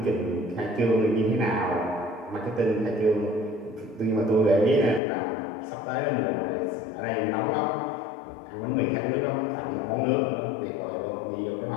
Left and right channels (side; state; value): right; drops out; at 5.0 s